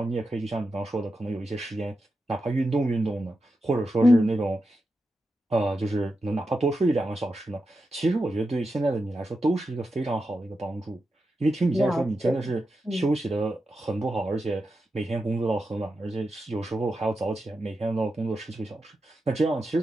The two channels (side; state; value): both; normal; correlation 0.89